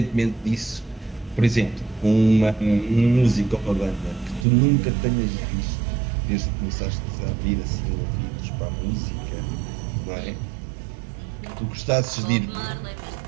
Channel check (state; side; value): drops out; left; at 4.5 s